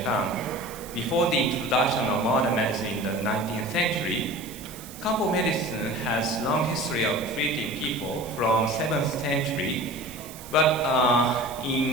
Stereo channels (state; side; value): noise; right; hiss, 16 dB below the sound